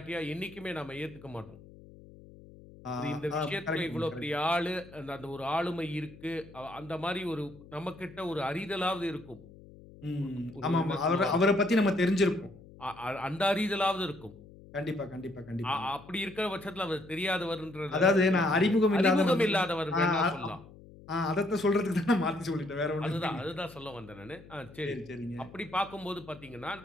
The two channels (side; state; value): left; noise; hum, 20 dB below the sound